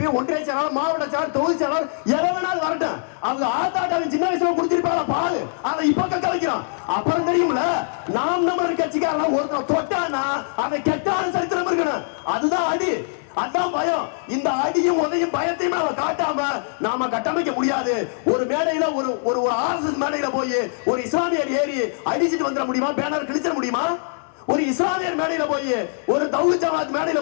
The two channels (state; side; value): silent; right; digital silence